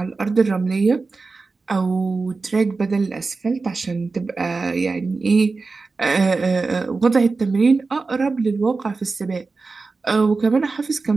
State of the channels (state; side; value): quieter; left; 4.0 dB